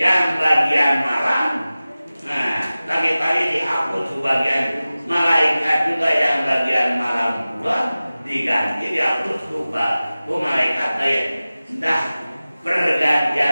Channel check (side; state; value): both; inverted; correlation -0.97